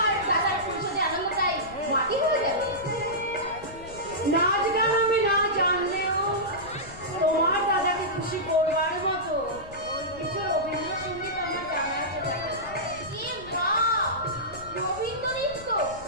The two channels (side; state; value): left; noise; rumble, 17 dB below the sound